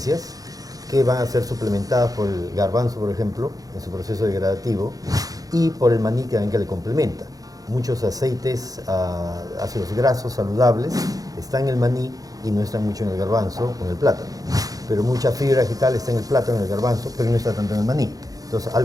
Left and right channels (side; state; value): left; late; 0.17 ms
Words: que van a ser suplementadas por el garbanzo, por ejemplo, en su proceso degradativo, y por el maní que le complementa. Muchos aceites, ácidos grasos saludables, están en el maní y no están mucho en el garbanzo o en el plátano. Pero mucha fibra vegetal está en el plátano y en el garbanzo, pero no está tanto en el maní. Entonces, al